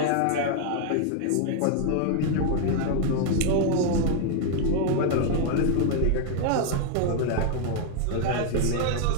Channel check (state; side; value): different; both; correlation 0.00